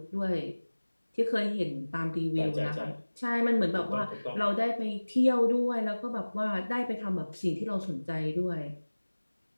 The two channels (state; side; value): inverted; both; correlation -1.00